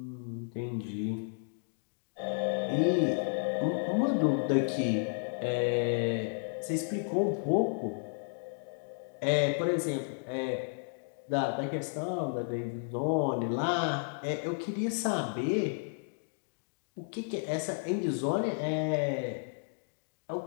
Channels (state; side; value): silent; right; digital silence